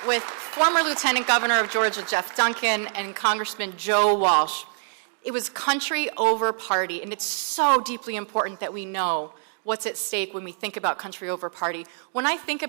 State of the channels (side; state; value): left; silent; digital silence